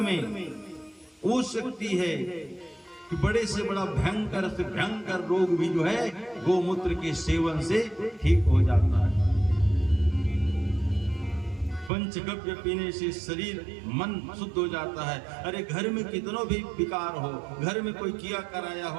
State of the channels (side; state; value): left; drops out; at 11.9 s